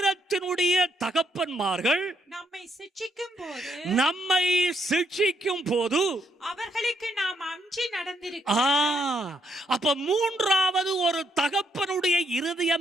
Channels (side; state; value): both; normal; correlation 0.74